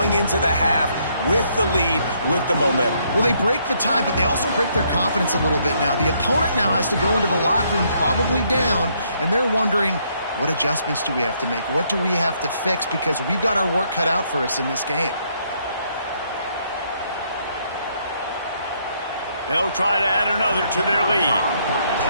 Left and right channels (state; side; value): inverted; both; correlation -0.71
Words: into the half with the lead, with the momentum? Well, they break the tie, but they also break their confidence a little bit now. The opponent now has to go into the locker room probably down, and they're wondering, what adjustments do we have to make? What do we have to fix? Because we've got our work cut out for us in this game. They'll try to add another to their lead.